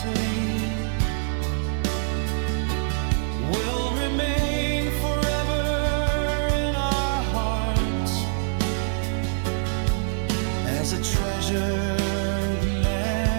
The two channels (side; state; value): left; silent; digital silence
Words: will remain forever in our hearts as a treasured